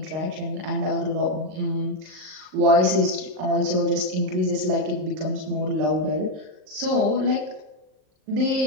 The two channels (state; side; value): late; left; 38 ms